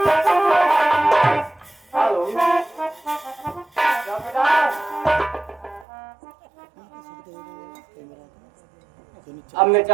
हेलो अब मैं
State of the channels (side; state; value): left; drops out; at 5.9 s